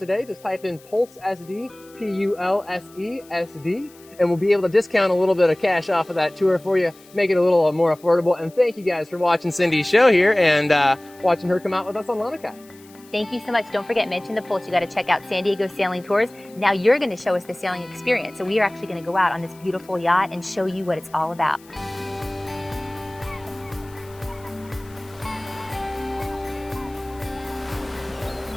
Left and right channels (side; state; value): left; noise; hiss, 25 dB below the sound